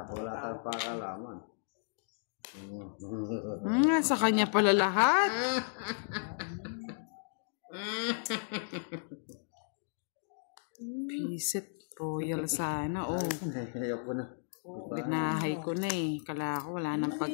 wala kang pakalaman? Sa kanya pala lahat. Pisit. Royal sana. Oh, Ayoko na. binahay ko na eh. Kala ko wala nang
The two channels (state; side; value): silent; right; digital silence